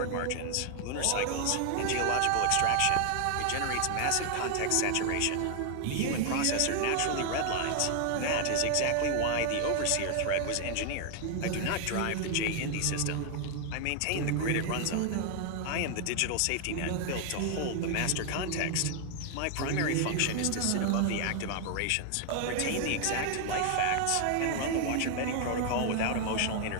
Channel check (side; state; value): both; different; correlation 0.00